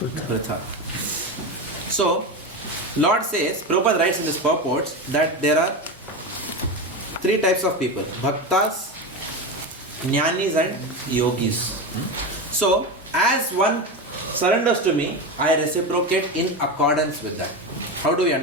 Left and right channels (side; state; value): both; normal; correlation 0.19